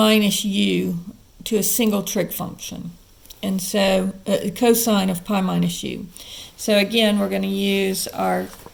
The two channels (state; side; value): identical; both; correlation 1.00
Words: u to a single trig function. And so cosine of pi minus u. So again, we're going to use our